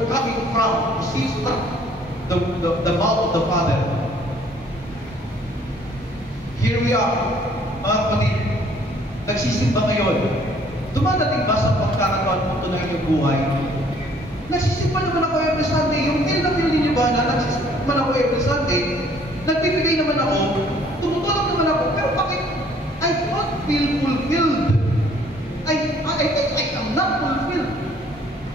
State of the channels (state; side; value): normal; both; correlation 0.59